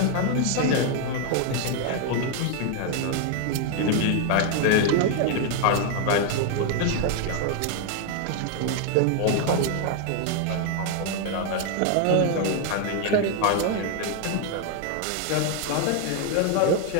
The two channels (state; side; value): different; both; correlation 0.00